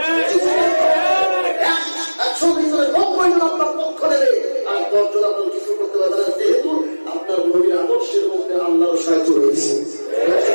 100 ভিতরে 90 জন আপনার পক্ষ নেবে আর 10 জন আপনার কিছু করতে পারবে না, যেহেতু আপনার নবীর আদর্শের মধ্যে আল্লাহর সাহায্য রয়েছে।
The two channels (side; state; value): both; inverted; correlation -1.00